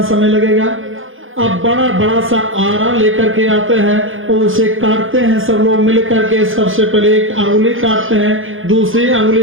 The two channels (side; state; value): left; late; 0.58 ms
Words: समय लगेगा? अब बड़ा बड़ा सा आरा लेकर के आते हैं और उसे काटते हैं सब लोग मिल करके। सबसे पहले एक अंगुली काटते हैं, दूसरी